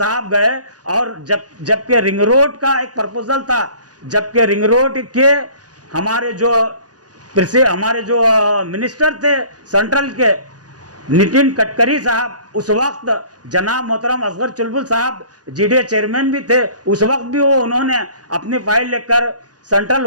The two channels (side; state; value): left; late; 0.68 ms